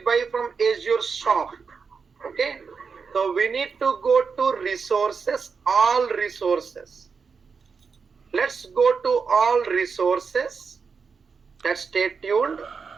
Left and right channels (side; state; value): left; quieter; 5.5 dB